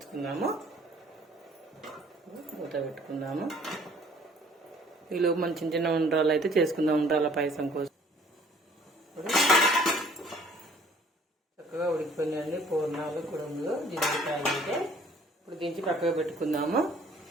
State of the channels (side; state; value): both; normal; correlation 0.56